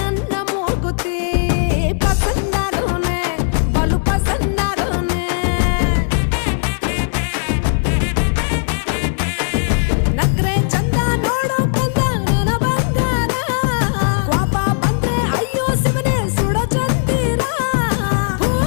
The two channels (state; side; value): silent; right; 63 dB below the other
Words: ಮೂಗುತಿ ಪಸಂದಾಗವ್ನೆ ಬಲು ಪಸಂದಾಗವ್ನೆ ನಕ್ರೆ ಚಂದ ನೋಡೋ ಕಂದ ನನ್ನ ಬಂಗಾರ ಕೋಪ ಬಂದ್ರೆ ಅಯ್ಯೋ ಶಿವನೇ ಸುಡೋ ಚಂದಿರ